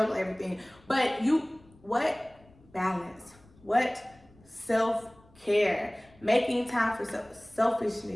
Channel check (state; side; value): noise; left; rumble, 28 dB below the sound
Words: everything. But what balance, what self-care, making time for